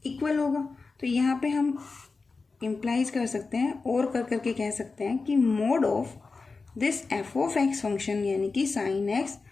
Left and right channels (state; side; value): quieter; right; 4.2 dB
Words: इक्वल होगा। तो यहाँ पे हम इम्प्लाइज कर सकते हैं और कर करके कह सकते हैं कि mod of this f of x function यानी कि sine x